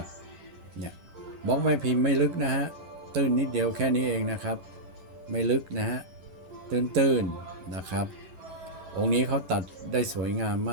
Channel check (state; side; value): late; left; 11 ms